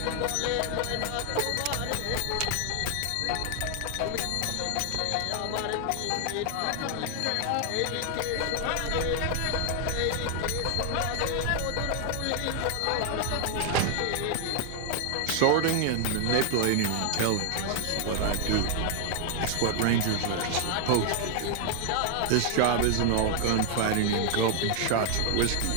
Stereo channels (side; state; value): both; different; correlation 0.00